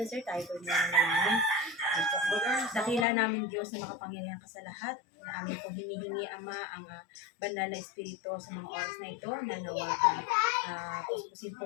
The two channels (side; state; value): right; drops out; at 3.1 s